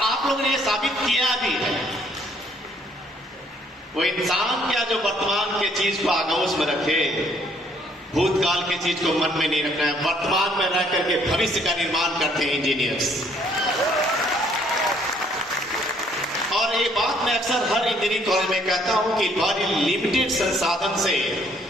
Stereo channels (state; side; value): normal; both; correlation 0.64